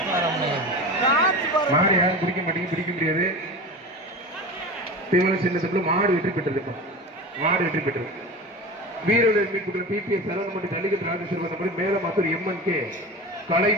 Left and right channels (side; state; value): both; normal; correlation 0.30